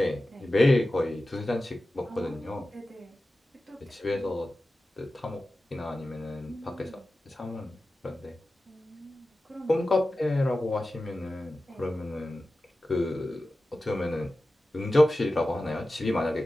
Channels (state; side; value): normal; both; correlation 0.94